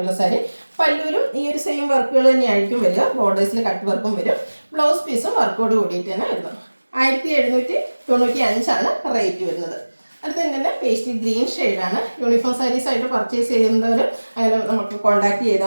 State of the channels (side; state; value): both; inverted; correlation -1.00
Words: സാരി. പല്ലുവിലും ഈ ഒരു സെയിം വർക്കുകൾ തന്നെയായിരിക്കും വരിക. ബോർഡേഴ്സിൽ കട്ട് വർക്കും വരും. ബ്ലൗസ് പീസും വർക്കോട് കൂടിയിട്ട് തന്നെ വരുന്നത്. 1795 ആണ് റേറ്റ് വരുന്നത്. അടുത്ത തന്നെ പേസ്റ്റൽ ഗ്രീൻ ഷെയ്ഡാണ്. യൂണിഫോം സാരീസ് ആയിട്ട് പർച്ചേസ് ചെയ്യുന്നവർ അങ്ങനെ നമുക്ക് കോൺടാക്ട്